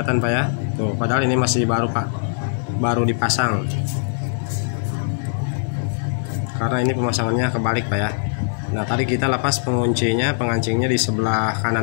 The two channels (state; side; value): silent; right; 60 dB below the other